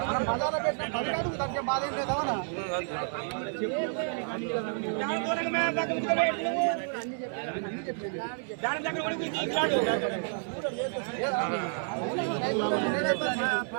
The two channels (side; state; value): left; silent; 58 dB below the other